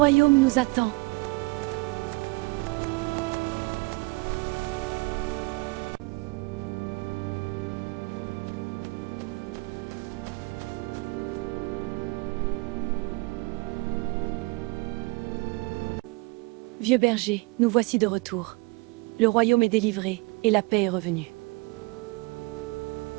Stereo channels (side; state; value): left; quieter; 27.0 dB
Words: nous attend. Vieux berger, nous voici de retour. Le royaume est délivré et la paix est revenue.